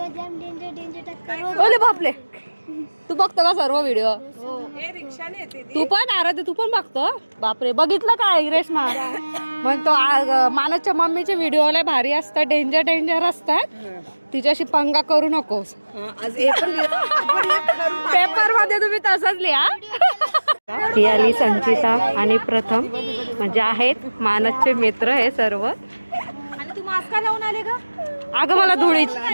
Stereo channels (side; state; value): both; inverted; correlation -1.00